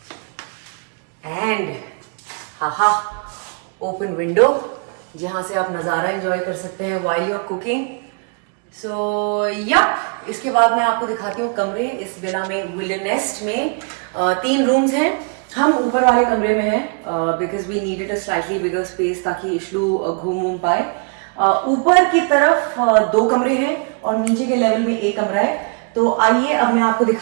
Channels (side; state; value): left; quieter; 37.3 dB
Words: and हाहा ओपन विंडो जहाँ से आप नज़ारा एंजॉय कर सकते हैं while you are cooking. So yup, इसके बाद मैं आपको दिखाती हूँ कमरे। इस विला में, विल्डरनेस्ट में 3 रूम्स हैं। हम ऊपर वाले कमरे में हैं because we needed a slightly bigger space ताकि इशलू घूम पाए। ऊपर की तरफ 2 कमरे हैं और नीचे के लेवल में 1 कमरा है। तो आइए अब मैं आपको